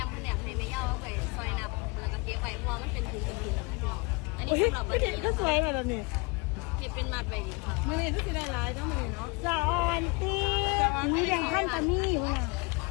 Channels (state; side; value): quieter; right; 27.5 dB